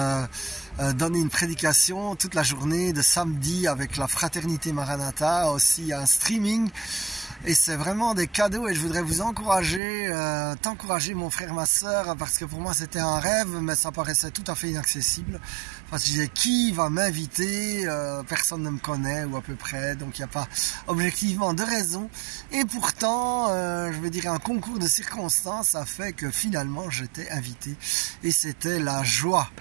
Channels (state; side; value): drops out; left; at 9.8 s